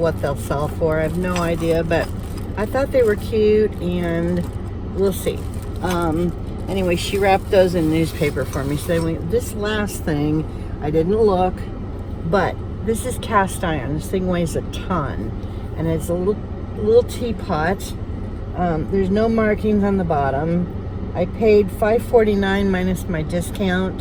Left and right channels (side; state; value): both; identical; correlation 1.00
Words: they'll sell for. I have no idea, but I thought they were cute, and we'll see. Anyway, she wrapped those in newspaper for me. So this last thing, I didn't look, but this is cast iron. This thing weighs a ton, and it's a little teapot. There's no markings on the bottom. I paid $5.49 minus my